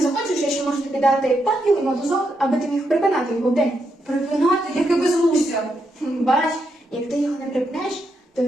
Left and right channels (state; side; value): normal; both; correlation 0.81